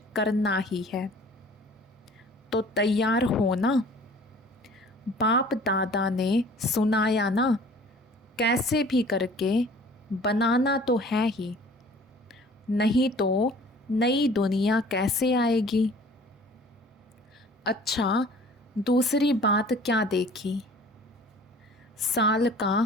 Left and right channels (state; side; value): normal; both; correlation 0.49